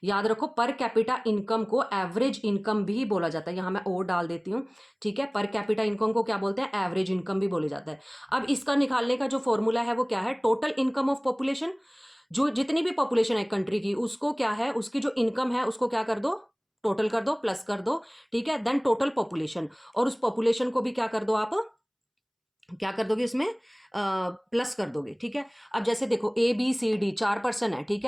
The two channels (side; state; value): both; identical; correlation 1.00